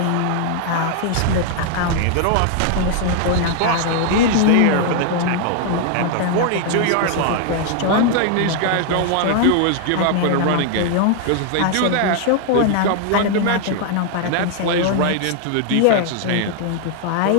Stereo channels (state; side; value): different; both; correlation 0.00